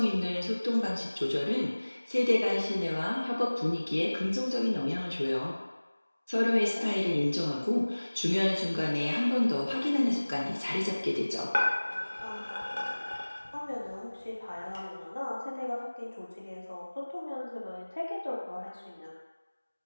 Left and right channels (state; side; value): inverted; both; correlation -1.00